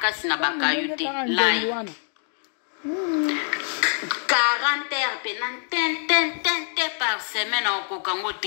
na bakayute. Lai. 40 heures pena ten par semaine au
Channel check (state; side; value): silent; right; 62 dB below the other